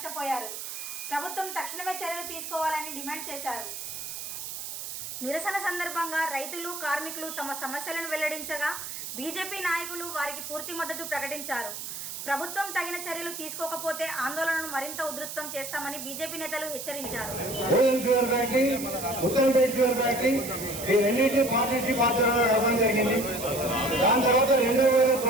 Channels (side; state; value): right; noise; hiss, 7 dB below the sound